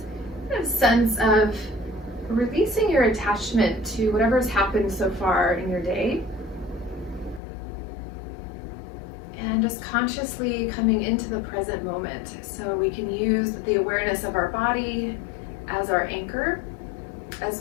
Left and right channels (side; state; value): right; drops out; at 7.4 s